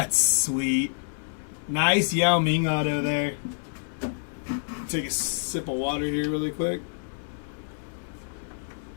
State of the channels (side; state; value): right; silent; digital silence